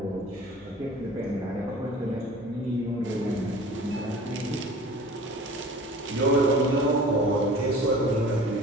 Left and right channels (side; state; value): both; normal; correlation 0.44